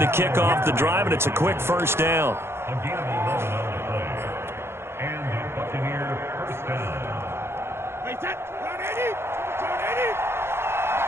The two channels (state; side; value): late; left; 0.12 ms